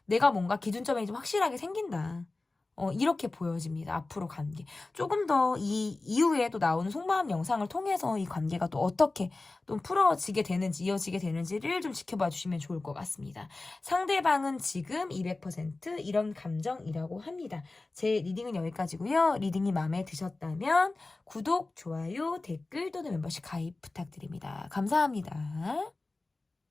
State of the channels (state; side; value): quieter; right; 3.3 dB